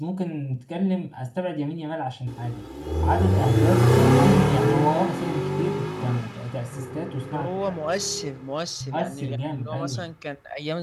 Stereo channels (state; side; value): identical; both; correlation 1.00